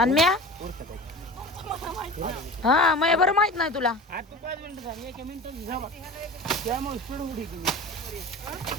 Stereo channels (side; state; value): both; normal; correlation 0.34